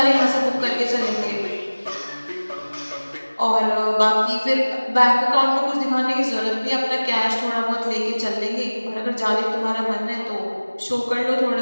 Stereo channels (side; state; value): both; inverted; correlation -1.00